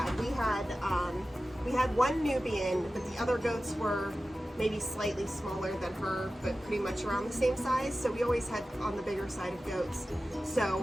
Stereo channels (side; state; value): both; normal; correlation 0.95